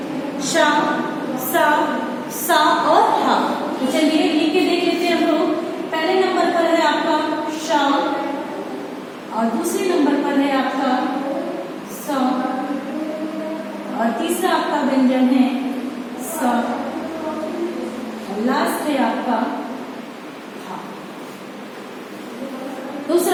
शा, सा, सा और हा। तो चलिए लिख के देख लेते हैं हम लोग। पहले नंबर पर है आपका शा और दूसरे नंबर पर है आपका सा और तीसरा आपका व्यंजन है सा और लास्ट है आपका हा।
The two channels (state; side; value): identical; both; correlation 1.00